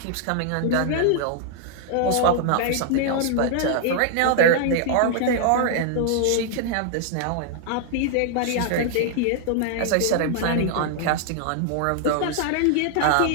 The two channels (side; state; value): both; different; correlation 0.00